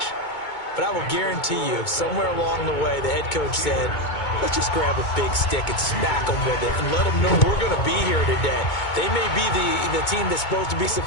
but I will guarantee you, somewhere along the way, the head coach said, let's just grab a big stick and smack them with it and let them know we're going to be here today. They may be the team that's supposed to be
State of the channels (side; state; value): right; late; 2.2 ms